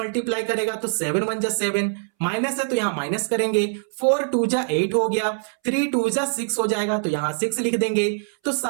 करेगा, तो 7 1 जा 7, माइनस है तो यहां माइनस करेंगे, 4 2 जा 8 हो गया, 3 2 जा 6 हो जाएगा, तो यहां 6 लिख देंगे। तो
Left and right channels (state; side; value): silent; left; 63 dB below the other